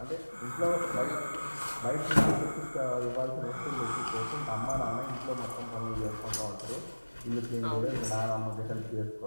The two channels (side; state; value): both; inverted; correlation -1.00